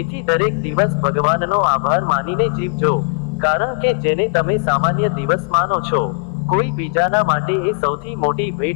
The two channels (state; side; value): quieter; right; 39.5 dB